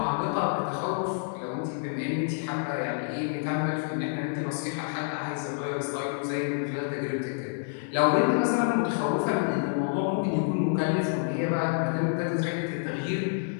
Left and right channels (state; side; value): silent; right; digital silence